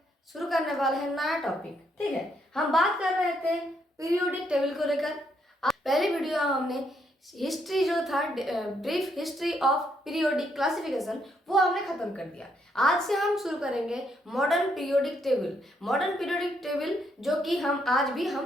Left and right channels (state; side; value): normal; both; correlation 0.74